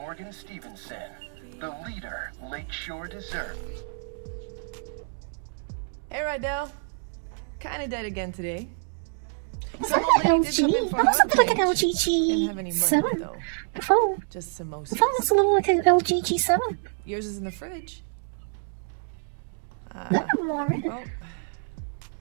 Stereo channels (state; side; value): silent; left; digital silence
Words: Stevenson, the leader Lakeshore deserves. Hey, Rydell. Kinda dead again today. It's like an LG. That was something like an LG G7 before. Just samosas. The phone was a little like an LG G7. Yours is in the fridge. Well,